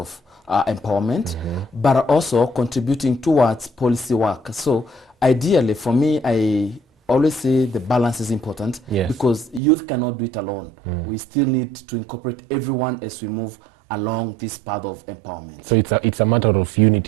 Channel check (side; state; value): left; drops out; at 9.6 s